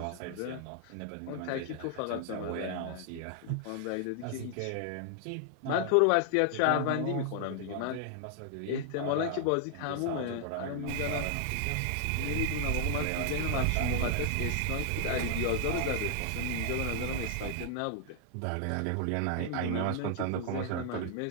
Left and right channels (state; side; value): different; both; correlation 0.00